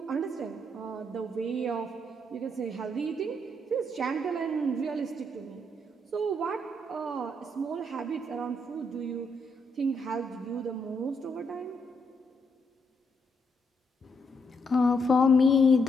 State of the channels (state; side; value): normal; both; correlation 0.76